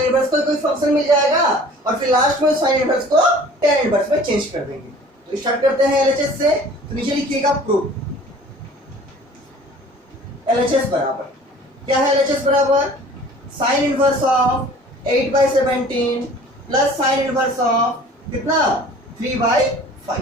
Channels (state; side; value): normal; both; correlation 0.48